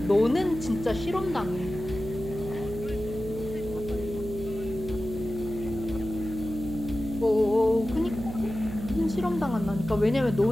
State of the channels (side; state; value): right; noise; hum, 9 dB below the sound